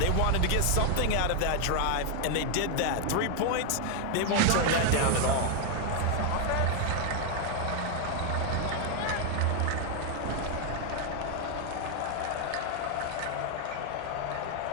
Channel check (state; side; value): different; both; correlation 0.01